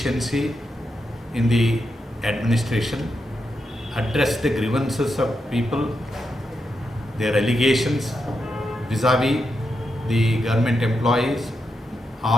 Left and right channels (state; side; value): normal; both; correlation 0.85